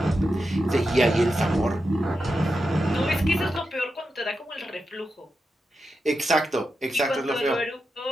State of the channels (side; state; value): both; normal; correlation 0.88